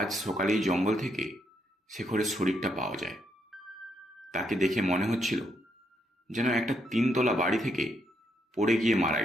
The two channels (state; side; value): normal; both; correlation 0.77